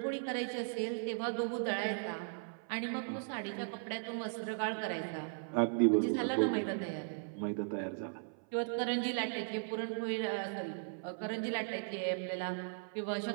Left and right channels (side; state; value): left; silent; 53 dB below the other